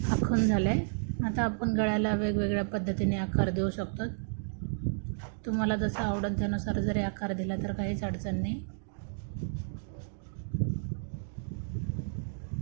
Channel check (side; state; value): left; silent; digital silence